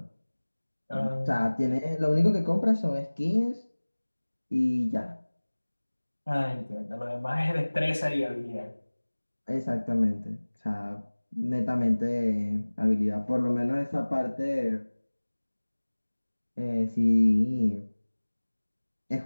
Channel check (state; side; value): inverted; both; correlation -1.00